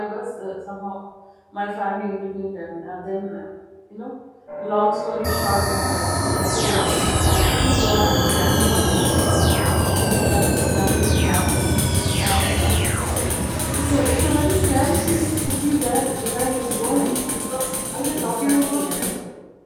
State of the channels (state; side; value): identical; both; correlation 1.00